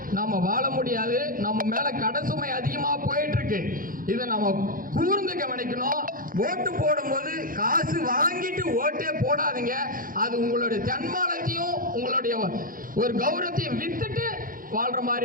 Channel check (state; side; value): late; left; 0.40 ms